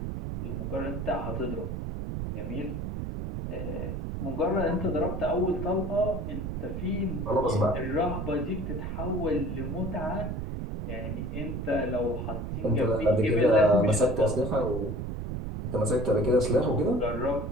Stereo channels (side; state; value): right; noise; rumble, 4 dB below the sound